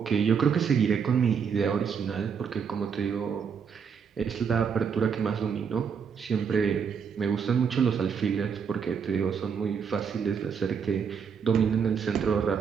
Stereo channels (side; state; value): left; quieter; 6.6 dB